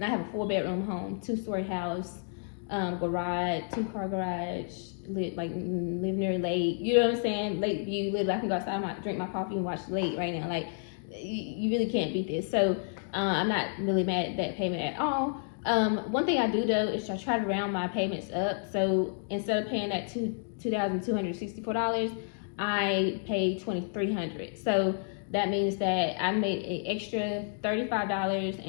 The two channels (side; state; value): right; silent; digital silence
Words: I have a 4 bedroom home, 2-story house, garage, 2-car garage, live near lake. You know what I'm saying? Lake view. Literally, I can go outside, I might drink my coffee and watch the lake right now. Like, you really can't beat this. So I'm not really mad at that payment at all. One thing I do though is I try to round my payments up. So instead of paying that $2,264, I paid $2,300. So that means that I made an extra $35